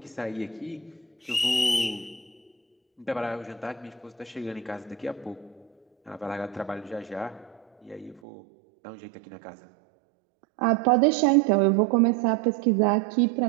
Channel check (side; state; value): left; drops out; at 8.2 s